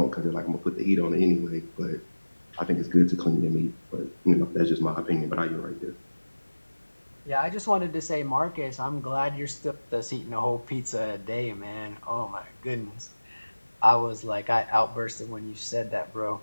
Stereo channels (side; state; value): both; inverted; correlation -1.00